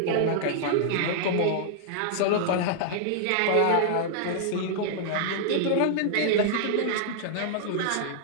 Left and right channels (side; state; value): both; different; correlation -0.01